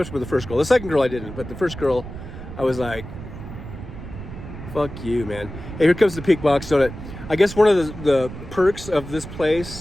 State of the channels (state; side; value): noise; right; rumble, 11 dB below the sound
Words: with the first girl. The second girl I didn't, but the first girl, I was like, fuck you, man. Hey, here comes the Pink Box Donut. I guess one of the perks of this